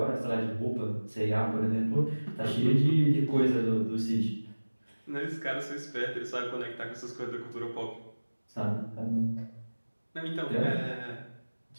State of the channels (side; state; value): both; inverted; correlation -1.00